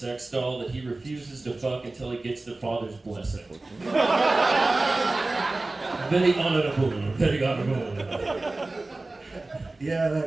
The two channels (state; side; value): quieter; left; 3.1 dB